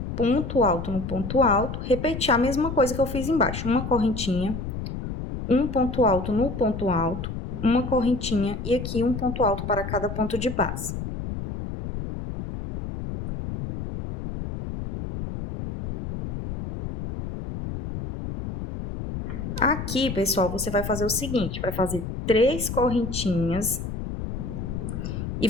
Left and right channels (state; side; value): noise; left; rumble, 6 dB below the sound